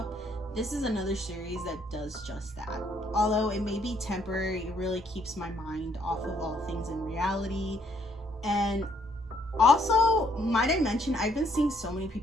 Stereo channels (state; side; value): normal; both; correlation 0.68